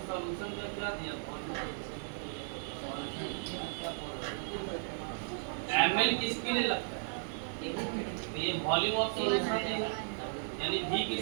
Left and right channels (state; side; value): silent; left; digital silence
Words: solution का क्या दिया? ml किसके लिए लगता है? ये वॉल्यूम ऑफ सॉल्यूशन देगा, यानी V